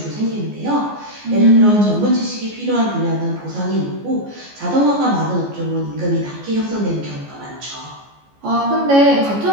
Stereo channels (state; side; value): late; left; 14 ms